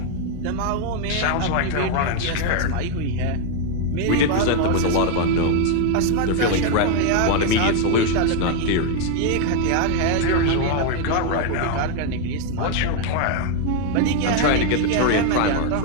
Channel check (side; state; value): both; different; correlation 0.01